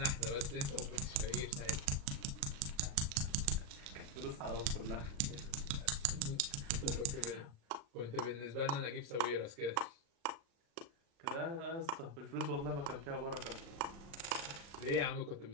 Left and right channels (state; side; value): late; left; 36 ms